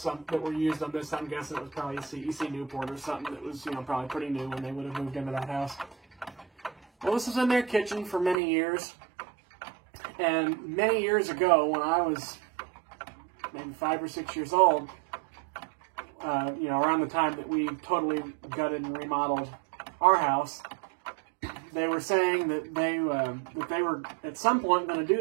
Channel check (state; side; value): drops out; left; at 8.3 s